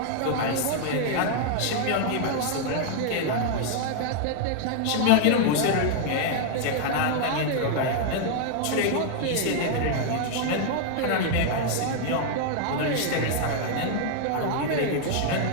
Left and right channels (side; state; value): both; different; correlation 0.00